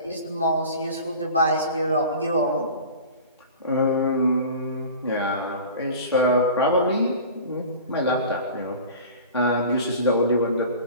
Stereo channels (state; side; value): inverted; both; correlation -0.39